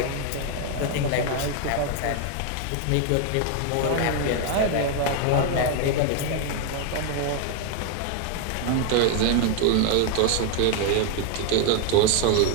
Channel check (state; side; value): different; both; correlation 0.00